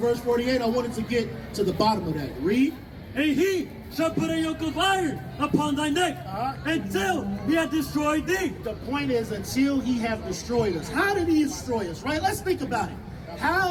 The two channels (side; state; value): both; identical; correlation 1.00